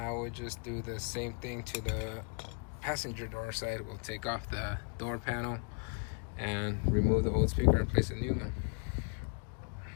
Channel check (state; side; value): quieter; right; 36.1 dB